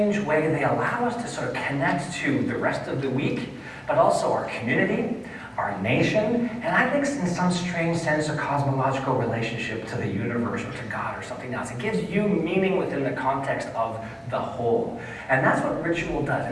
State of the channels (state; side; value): identical; both; correlation 1.00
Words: way, they allow us to sort of connect to the rest of the week, but also our community, our nation, and I think in some strange sense a cosmological relationship to the universe or to God or something else. It gives you meaning within the context of the whole. And that's what ritual does.